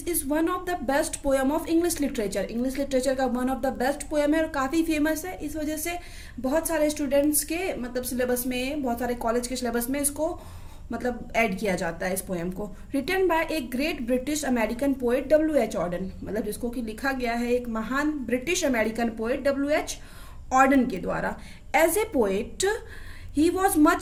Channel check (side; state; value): both; identical; correlation 1.00